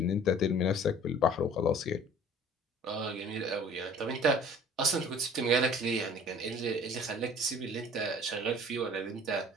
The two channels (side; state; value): both; normal; correlation 0.48